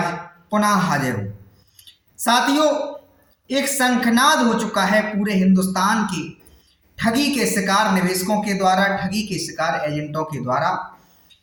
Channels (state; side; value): identical; both; correlation 1.00